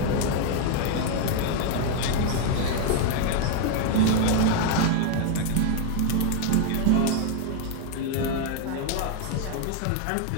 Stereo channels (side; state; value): both; different; correlation 0.01